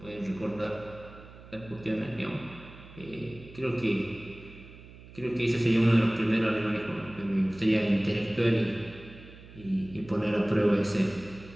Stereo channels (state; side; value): noise; right; hum, 19 dB below the sound